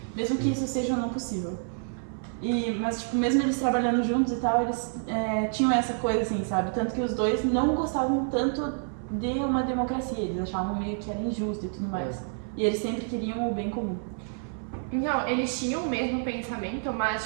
Mesmo que isso seja não possível. Mas, tipo, mesmo eles trabalhando juntos e tal, eles tinham essa coisa, assim, sabe? Tanto que os dois não gostavam tanto de uma democracia, eles achavam meio que era injusto e tudo mais. E eles sempre queriam o bem comum. Não, eles tinham o mesmo pensamento, mas,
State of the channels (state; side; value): silent; left; 56 dB below the other